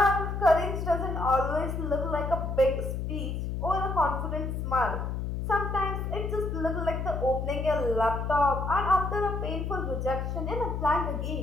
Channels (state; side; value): noise; left; hum, 3 dB below the sound